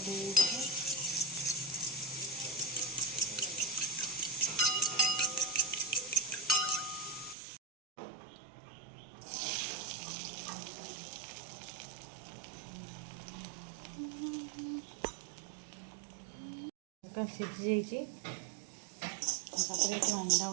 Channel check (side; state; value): left; drops out; at 7.4 s